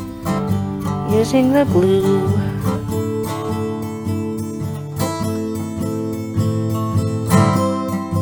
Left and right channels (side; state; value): both; identical; correlation 1.00